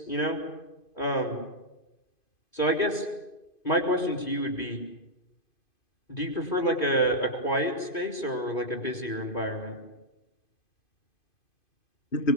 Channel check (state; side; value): late; right; 2.5 ms